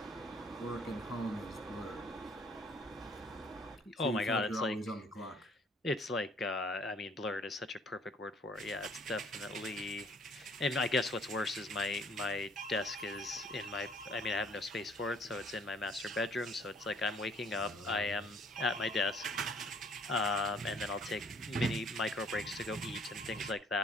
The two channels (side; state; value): both; normal; correlation 0.59